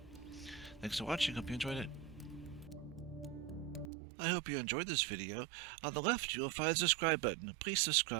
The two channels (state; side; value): drops out; left; at 3.9 s